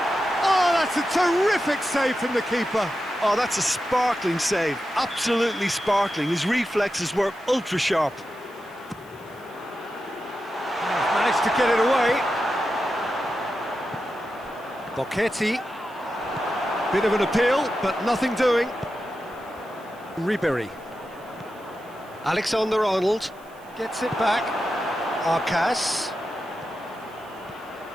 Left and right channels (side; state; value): right; noise; hiss, 28 dB below the sound